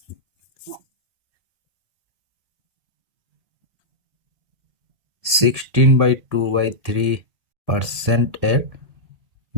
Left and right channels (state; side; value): late; left; 2.0 ms